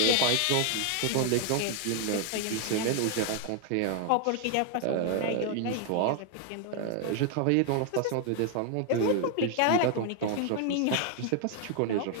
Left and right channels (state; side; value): different; both; correlation 0.00